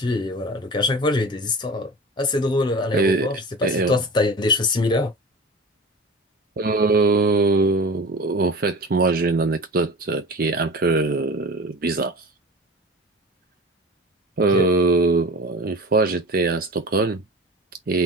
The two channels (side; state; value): both; normal; correlation 0.35